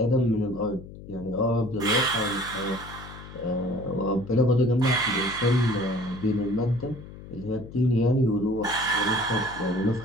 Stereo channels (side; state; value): left; noise; hum, 15 dB below the sound